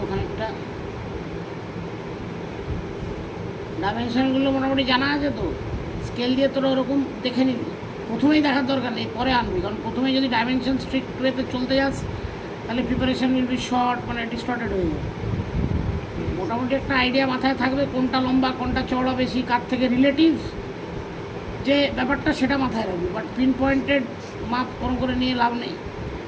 খানিকটা। ডাইমেনশনগুলো মোটামুটি জানা আছে তো, স্কেল দিয়ে তোরা ওরকম দেখে নিবি, প্রথমেই দেখার দরকার নেই, পরে আনবি, কারণ প্রথমেই যদি ডাইমেনশন স্ট্রিক্ট ওয়েতে চলতে যাস তাহলে প্রিপারেশন উইল বি শর্ট, মানে ডিস্টর্টেড হয়ে যাবে। মোটামুটি একটা আইডিয়া মাথায় থাকবে কোনটা লম্বা কোনটা চওড়া বেশি, কার থেকে রিলেটিভ যে ব্যাপারটা সেটা মাথায় রাখবি, বাট পিন পয়েন্টেড মাপ কোন করে নিয়ে লাভ নেই।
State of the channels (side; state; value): both; identical; correlation 1.00